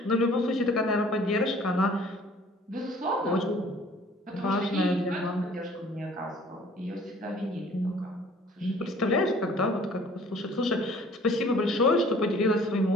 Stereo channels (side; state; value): both; normal; correlation 0.53